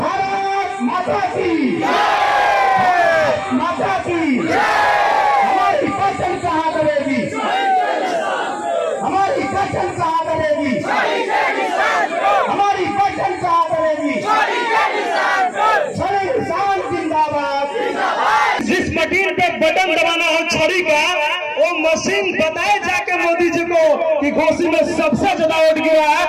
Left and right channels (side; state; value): both; identical; correlation 1.00